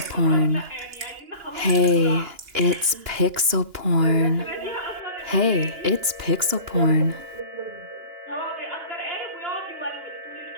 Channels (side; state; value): left; late; 2.9 ms